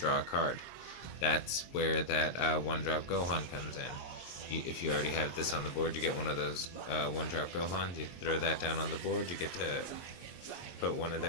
a card. That's where that 1-drop Gohan comes in. If you already have this on the board, you get one of those 1-drop Gohans. You throw that down on the board, you get to put one of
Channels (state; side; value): late; right; 23 ms